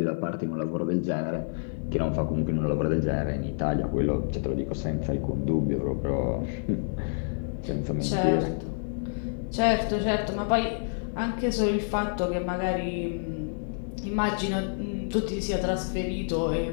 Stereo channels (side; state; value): right; silent; digital silence